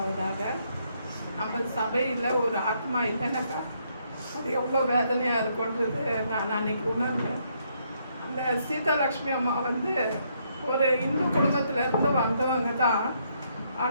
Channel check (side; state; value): both; inverted; correlation -0.73